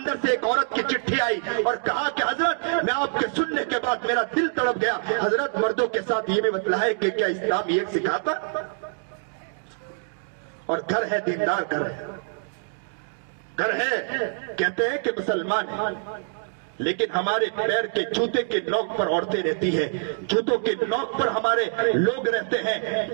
سے ایک عورت کی چٹھی آئی اور کہا کہ حضرت میں آپ کے سننے کے بعد میرا دل تڑپ گیا، حضرت مردوں کے ساتھ یہ بھی بتلا ہے کہ کیا اسلام یہ سکھاتا؟ اور گھر ہے، دیندار گھر ہے، کہتے ہیں کہ مسلمان ہے، لیکن ہمارے پیر کے جوتے کے نوک پر عورتیں رہتی ہیں، جوتوں کے نوک پر ہمارے لوگ رہتے ہیں،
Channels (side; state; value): left; silent; digital silence